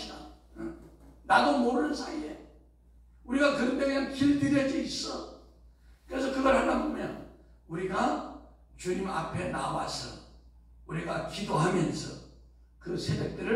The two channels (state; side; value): identical; both; correlation 1.00